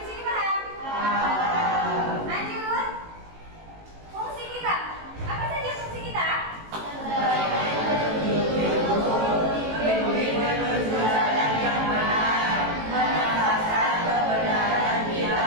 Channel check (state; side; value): late; left; 18 ms